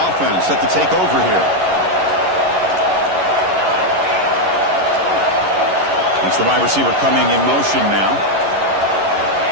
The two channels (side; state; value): left; late; 11 ms